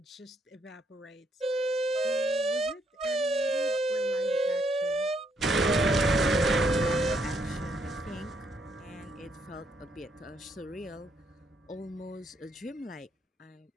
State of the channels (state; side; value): normal; both; correlation 0.73